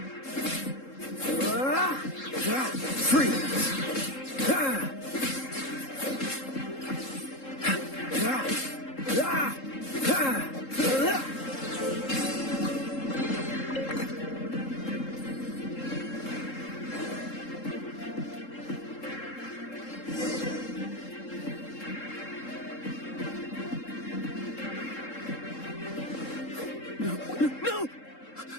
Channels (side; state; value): right; late; 3.7 ms